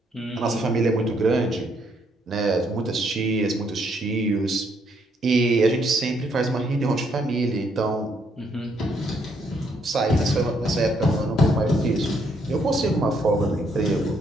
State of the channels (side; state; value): both; normal; correlation 0.72